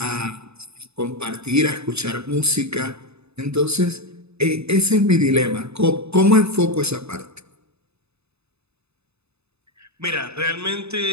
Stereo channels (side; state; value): left; late; 0.80 ms